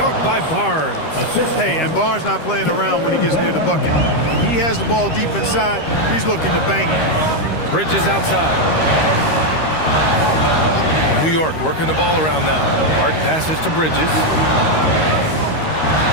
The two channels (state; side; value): late; right; 13 ms